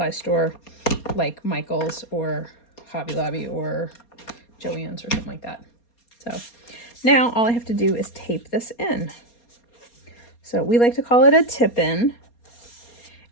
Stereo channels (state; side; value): late; right; 4.3 ms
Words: store like Michael's or Hobby Lobby or Joann's or something like that. So now all I have to do is tape this in. So we like to call it a tip-in.